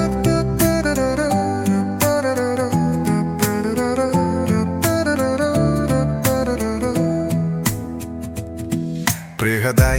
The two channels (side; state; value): both; identical; correlation 1.00